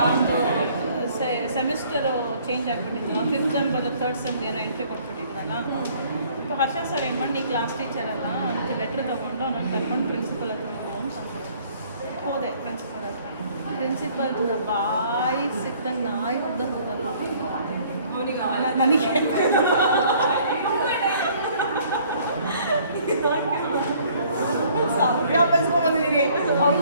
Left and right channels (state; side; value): inverted; both; correlation -0.58